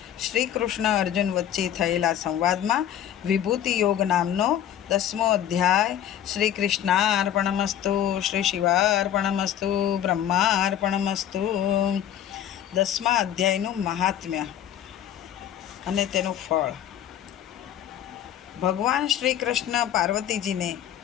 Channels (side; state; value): right; quieter; 10.6 dB